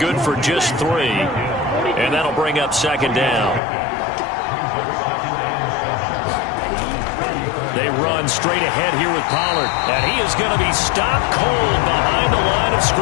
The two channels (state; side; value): drops out; right; at 3.6 s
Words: for just 3. And that'll bring up 2nd down. They run straight ahead here with Pollard. And he is going to be stopped cold behind the line of